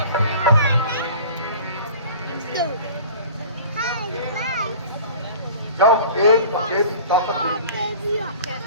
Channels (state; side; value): inverted; both; correlation -0.43